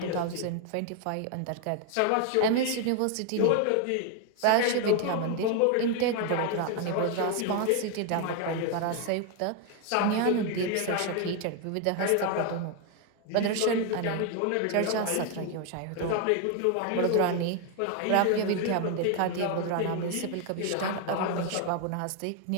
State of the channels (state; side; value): different; both; correlation 0.00